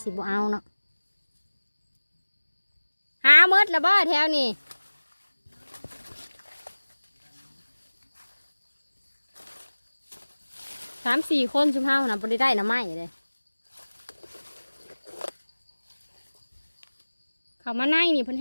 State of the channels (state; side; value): inverted; both; correlation -1.00